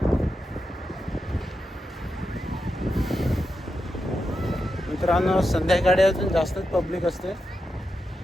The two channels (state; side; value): normal; both; correlation 0.87